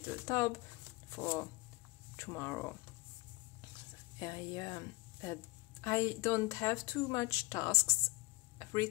tab for tomorrow. I don't have too much tasks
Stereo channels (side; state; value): right; quieter; 22.8 dB